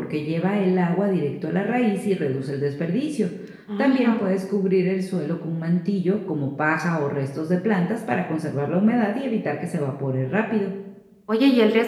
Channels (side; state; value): both; identical; correlation 1.00